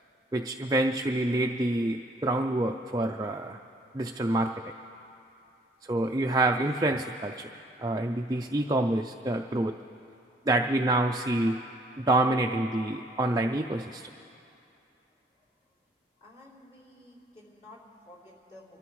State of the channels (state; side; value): normal; both; correlation 0.62